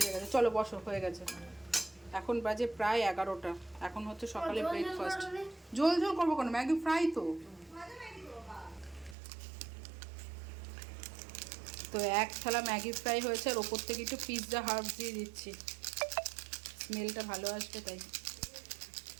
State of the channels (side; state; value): left; drops out; at 9.2 s